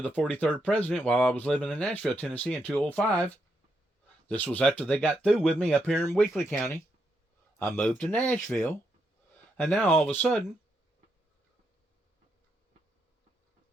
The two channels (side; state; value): both; normal; correlation 0.81